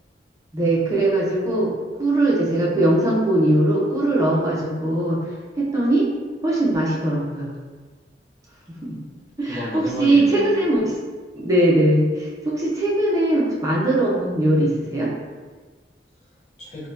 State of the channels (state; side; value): normal; both; correlation 0.67